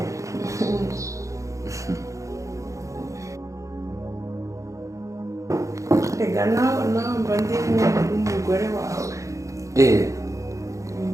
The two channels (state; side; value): late; left; 0.15 ms